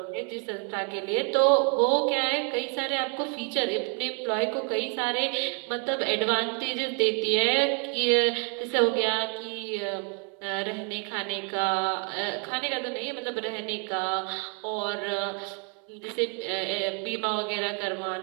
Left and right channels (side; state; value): left; quieter; 37.2 dB